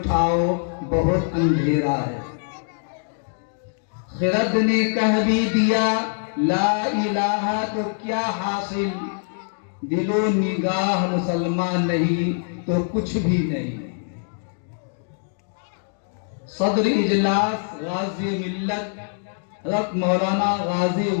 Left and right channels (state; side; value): silent; right; digital silence